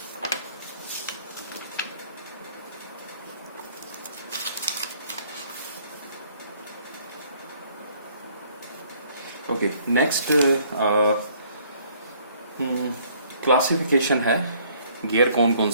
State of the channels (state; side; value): inverted; both; correlation -0.61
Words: ओके, नेक्स्ट क्लासिफिकेशन है गियर कौन कौन